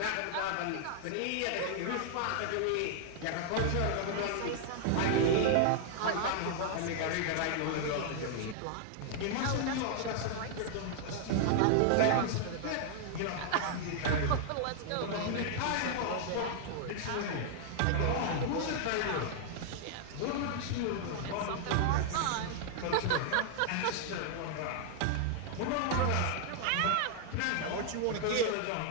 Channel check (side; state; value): both; different; correlation 0.00